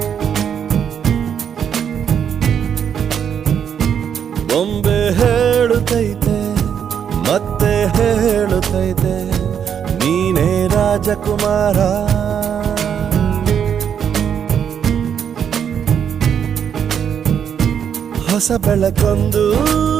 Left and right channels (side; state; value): left; quieter; 8.1 dB